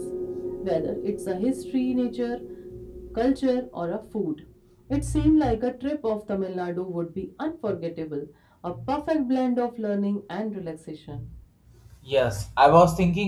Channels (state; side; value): identical; both; correlation 1.00